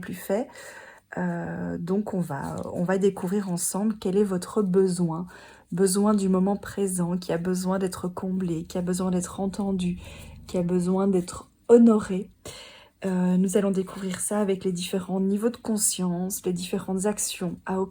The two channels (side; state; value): both; identical; correlation 1.00